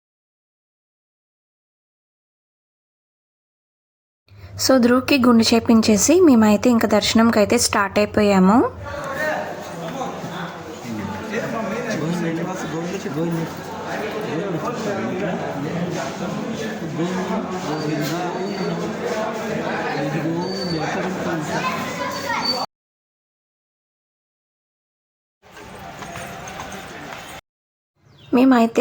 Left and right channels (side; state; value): both; identical; correlation 1.00